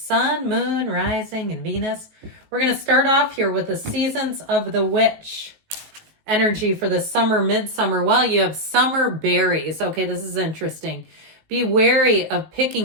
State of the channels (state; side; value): late; left; 19 ms